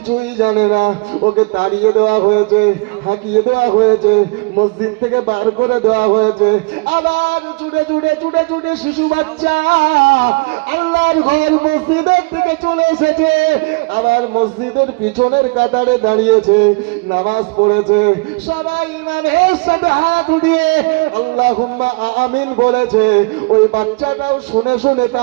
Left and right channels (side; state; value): left; quieter; 28.4 dB